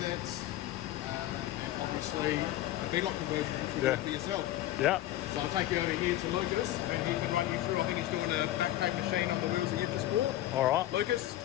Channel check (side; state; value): right; quieter; 14.4 dB